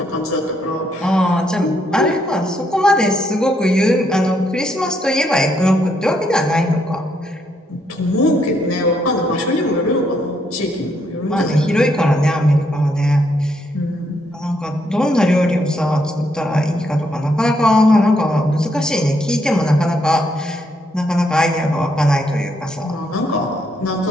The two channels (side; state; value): both; normal; correlation 0.75